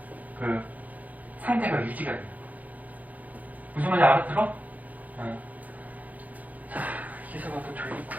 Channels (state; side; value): late; left; 0.078 ms